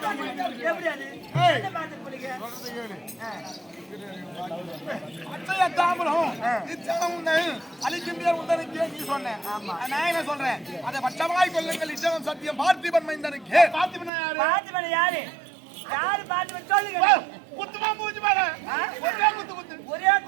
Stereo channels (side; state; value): left; drops out; at 14.1 s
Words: எப்படி அது? என்ன பாட்டு பிடிக்க? அச்சய தாமரம் இச்சனம் உந்தன் அழிக்கும் பேர் உந்தனுக்கு நீ சொன்னேன். நான் என்ன சொல்றேன்? அதை பட்சமாய் கொள்ளுங்கள் இச்சனம் சத்தியம் பார்த்திபன் மைந்தனுக்கு. பார்த்திபன் யாரு? பாத்துமணி யாரு? யாரு பாத்துமணி சொல்லுங்க. குத்துமா மூஞ்சி மேல ஒரே குத்து குத்து ஒரே